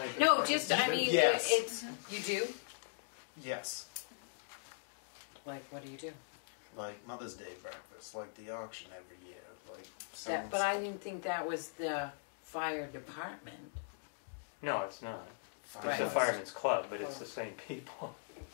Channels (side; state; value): right; silent; digital silence